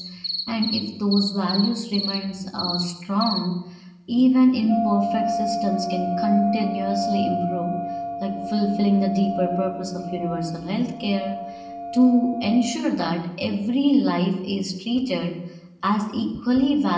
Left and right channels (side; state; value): both; identical; correlation 1.00